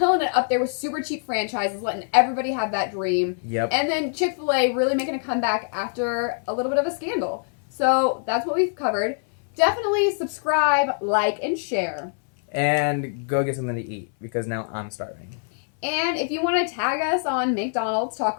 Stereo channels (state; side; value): silent; right; 63 dB below the other